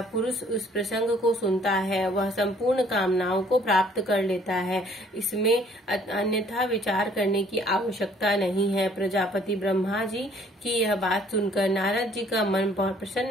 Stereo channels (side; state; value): both; normal; correlation 0.59